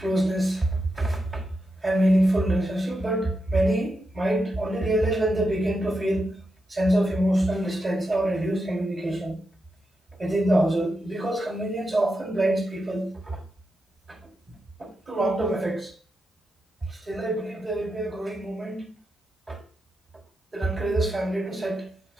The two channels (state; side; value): normal; both; correlation 0.86